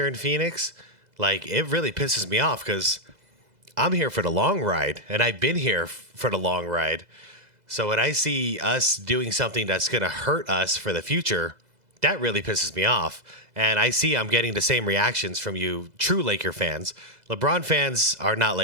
in Phoenix, like, it really pisses me off because I'm here for the long ride, and I've been here for the long ride. So when I see us doing something that's going to hurt us for the future, that really pisses me off. And I see I'm getting the same reactions from you true Laker fans. LeBron fans are not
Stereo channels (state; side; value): late; left; 2.0 ms